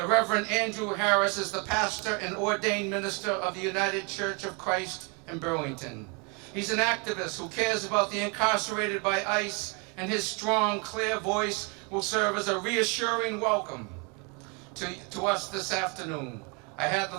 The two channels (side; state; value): left; quieter; 33.1 dB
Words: Reverend Andrew Harris is the pastor and ordained minister of the United Church of Christ in Burlington. He's an activist who cares about the incarcerated by ICE, and his strong, clear voice will serve as a reassuring welcome to us this afternoon. I had